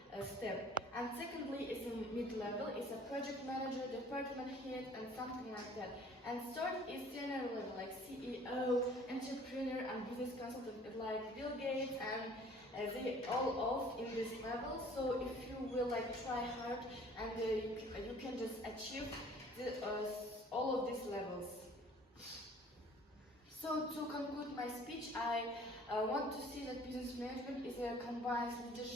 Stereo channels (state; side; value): normal; both; correlation 0.52